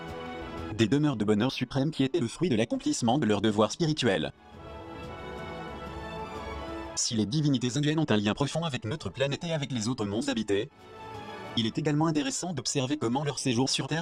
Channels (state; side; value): identical; both; correlation 1.00